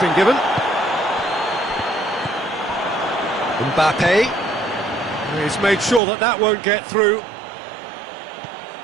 given. Mbappe. He's made sure that that won't get through.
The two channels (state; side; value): drops out; left; at 6.0 s